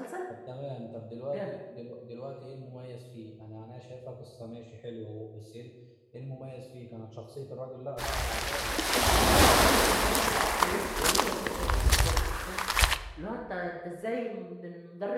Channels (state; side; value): identical; both; correlation 1.00